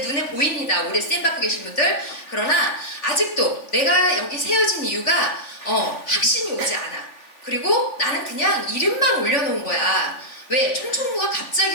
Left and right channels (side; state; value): right; late; 3.5 ms